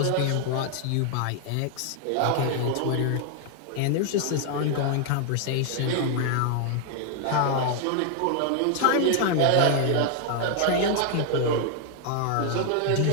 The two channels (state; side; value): different; both; correlation 0.00